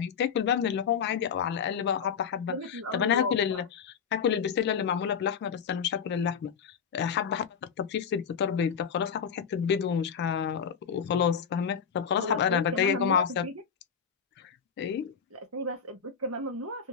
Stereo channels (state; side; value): quieter; right; 6.9 dB